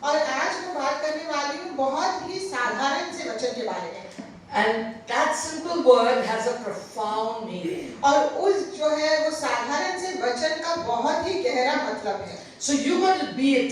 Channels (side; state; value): both; identical; correlation 1.00